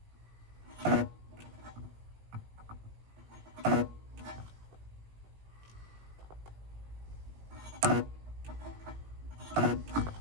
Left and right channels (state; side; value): late; left; 18 ms